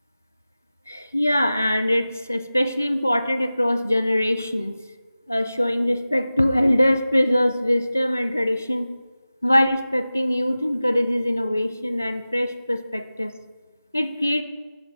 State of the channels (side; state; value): both; inverted; correlation -0.95